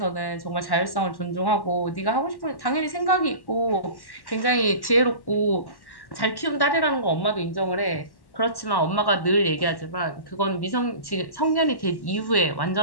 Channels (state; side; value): late; right; 1.1 ms